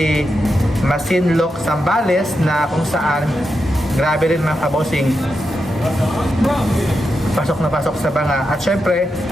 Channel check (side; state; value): both; normal; correlation 0.87